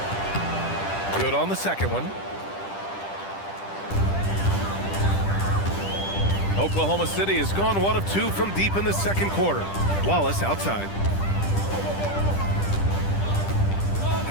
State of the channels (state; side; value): late; right; 10 ms